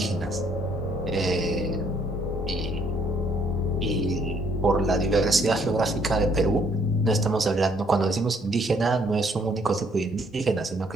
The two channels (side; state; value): both; normal; correlation 0.66